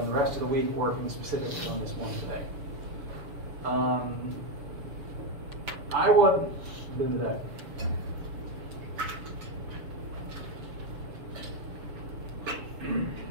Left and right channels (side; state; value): left; late; 6.9 ms